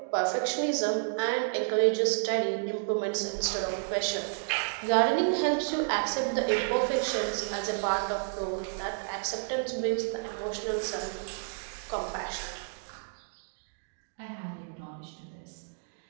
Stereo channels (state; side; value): silent; left; digital silence